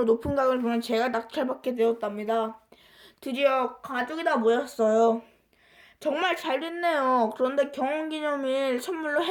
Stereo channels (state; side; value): identical; both; correlation 1.00